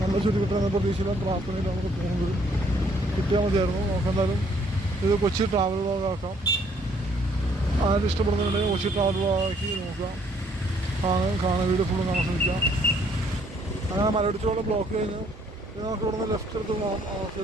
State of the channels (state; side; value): normal; both; correlation 0.65